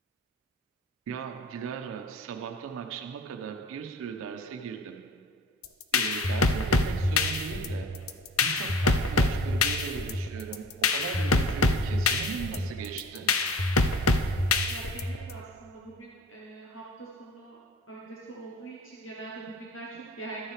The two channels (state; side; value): normal; both; correlation 0.42